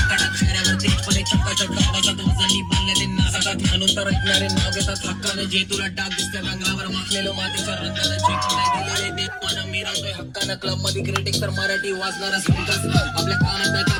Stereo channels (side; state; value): both; identical; correlation 1.00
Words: क्लब मध्ये क्रिटिक्स तर मराठी वाचणारा आपल्या कानात